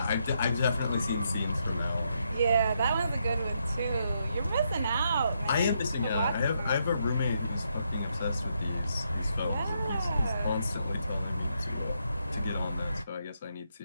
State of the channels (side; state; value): both; inverted; correlation -0.78